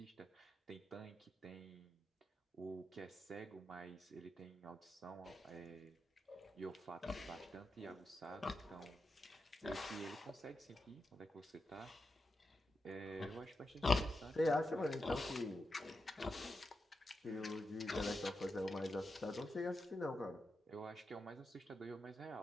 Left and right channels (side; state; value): both; normal; correlation 0.88